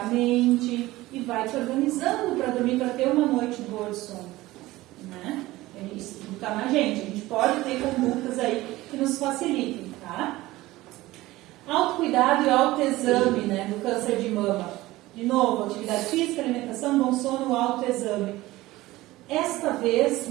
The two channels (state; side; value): quieter; left; 18.1 dB